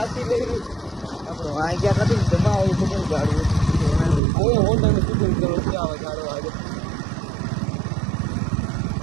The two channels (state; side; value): drops out; left; at 4.2 s